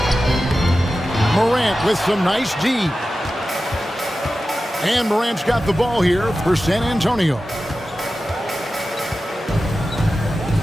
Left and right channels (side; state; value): both; normal; correlation 0.94